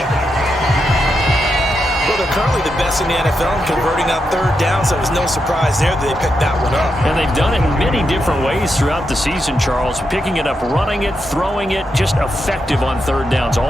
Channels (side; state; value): both; normal; correlation 0.84